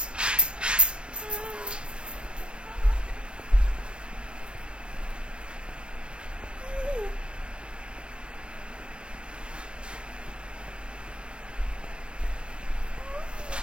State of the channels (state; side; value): late; left; 0.053 ms